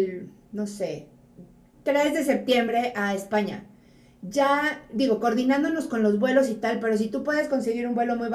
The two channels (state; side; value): identical; both; correlation 1.00